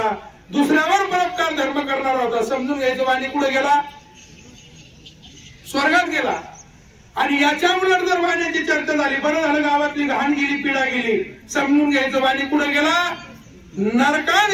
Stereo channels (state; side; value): identical; both; correlation 1.00